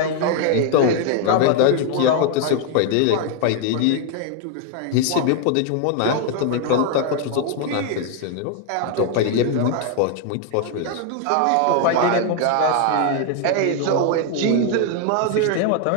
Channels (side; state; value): both; different; correlation 0.00